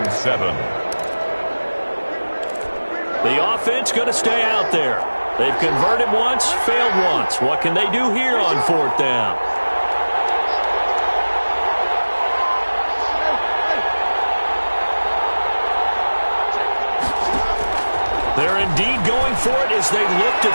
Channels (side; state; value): both; inverted; correlation -1.00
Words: 7. The offense going to stay out there. They've converted once, failed once. What can they do here on 4th down? They're indeed going for it as they look to